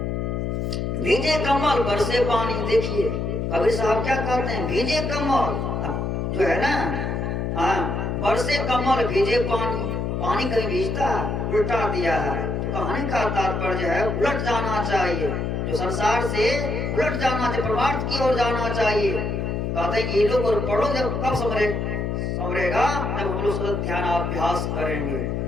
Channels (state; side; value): noise; left; hum, 1 dB below the sound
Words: भीजे कमल बरसे पानी। देखिए कबीर साहब क्या कहते हैं, भीजे कमल जो है ना, बरसे कमल भीजे पानी। पानी कहीं भीजता है, उल्टा दिया है। तो कहने का तात्पर्य है उलट जाना चाहिए, जो संसार से उलट जाना चाहिए, परमार्थ की ओर जाना चाहिए। कहते हैं ये लोग और पढ़ो जब कब संवरेगा, जब हम लोग सतत ध्यान अभ्यास करेंगे,